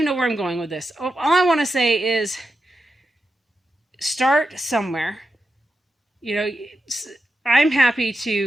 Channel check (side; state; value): both; normal; correlation 0.88